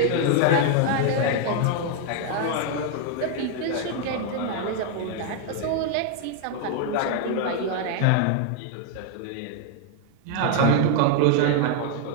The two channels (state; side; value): different; both; correlation 0.00